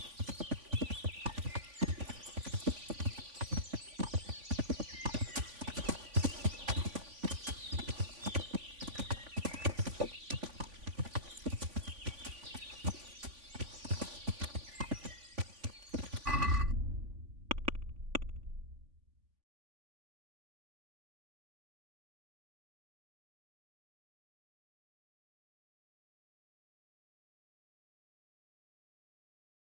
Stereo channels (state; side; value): late; left; 3.5 ms